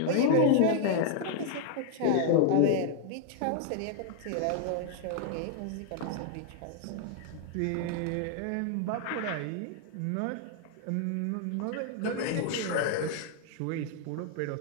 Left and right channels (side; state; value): both; different; correlation 0.00